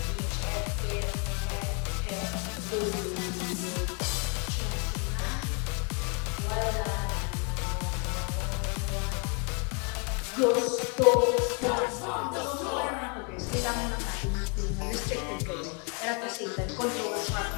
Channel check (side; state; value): right; quieter; 34.9 dB